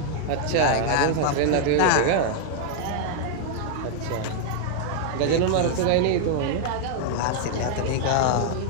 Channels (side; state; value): both; different; correlation 0.00